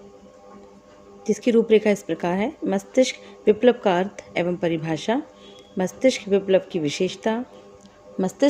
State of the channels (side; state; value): both; identical; correlation 1.00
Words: जिसकी रूपरेखा इस प्रकार है। मस्तिष्क विप्लव का अर्थ एवं परिभाषा, मस्तिष्क विप्लव की विशेषता,